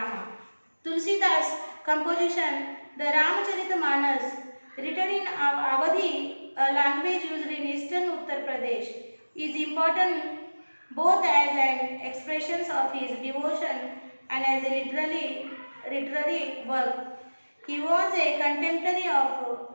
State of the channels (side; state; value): both; inverted; correlation -1.00